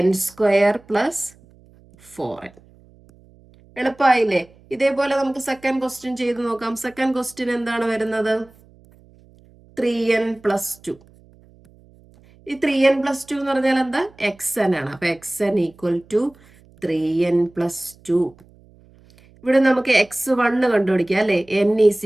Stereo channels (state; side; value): noise; right; hum, 28 dB below the sound